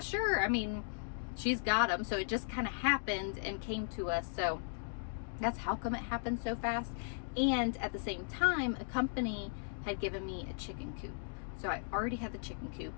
sure. I mean, she's got them. So it just kind of happened and came to us. So that's how come it happened so fast. And at the same time, a company had given me a chicken coop. So I already had the chicken coop,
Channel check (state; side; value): silent; right; digital silence